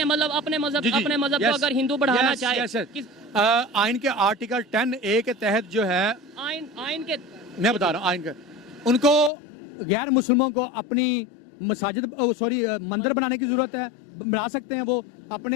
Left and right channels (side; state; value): right; drops out; at 9.3 s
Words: مطلب اپنے مذہب کو اگر ہندو بڑھانا چاہے, آئین کے آرٹیکل 10A کے تحت جو ہے, آئین کے میں بتا رہا ہوں, آئین کا ان کو غیر مسلموں کو اپنی مساجد مندر بنانے کی ضرورت ہے, بنا سکتے ہیں, وہ